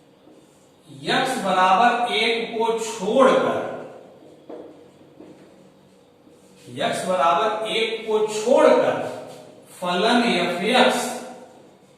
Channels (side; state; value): both; identical; correlation 1.00